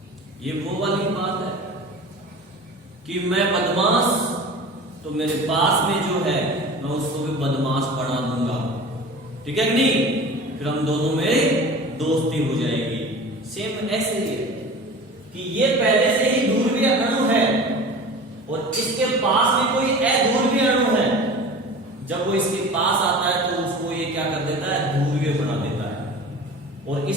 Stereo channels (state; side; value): normal; both; correlation 0.37